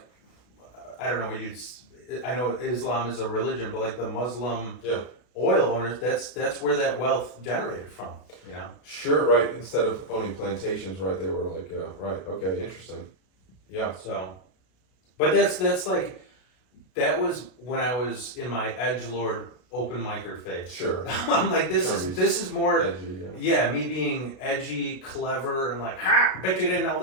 I don't know what you'd. I know Islam is a religion, but like the Muslim Yeah. oil owners, that's where that wealth generated from. You know. Sure, right. Instead of owning plantations, right, they were like, right, okay, interesting. Yeah. So, but that's like, that was when I was in my edgelord open micer phase. Sure. I'm like, this is more, Edgy, yeah. yeah, me being edgy, clever, and like, ha, bet you didn't know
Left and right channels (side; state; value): right; late; 33 ms